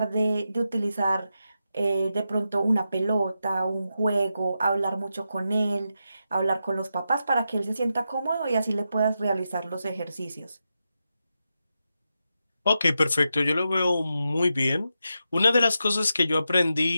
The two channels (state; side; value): inverted; both; correlation -0.87